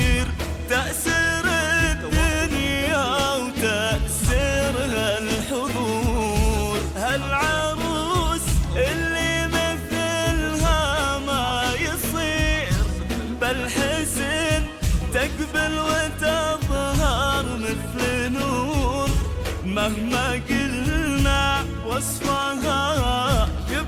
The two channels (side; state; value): both; identical; correlation 1.00